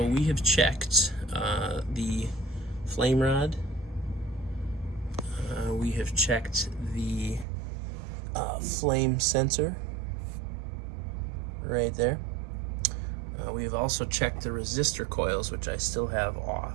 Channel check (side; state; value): left; drops out; at 7.5 s